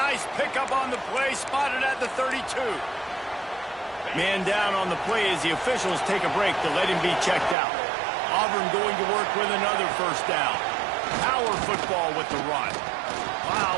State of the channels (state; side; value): drops out; left; at 7.6 s